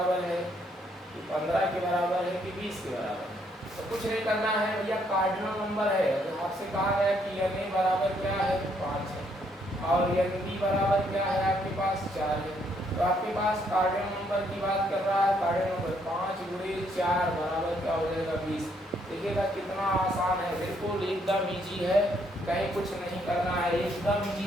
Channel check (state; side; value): normal; both; correlation 0.71